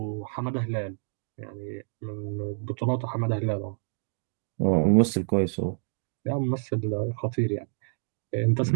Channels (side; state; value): left; silent; digital silence